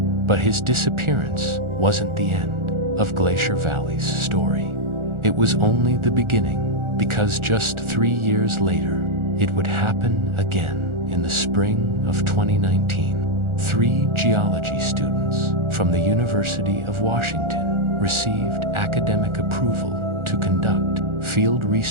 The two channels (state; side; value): late; left; 1.4 ms